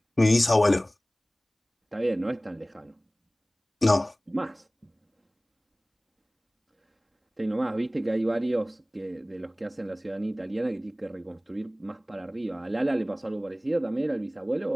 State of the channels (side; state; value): both; normal; correlation 0.98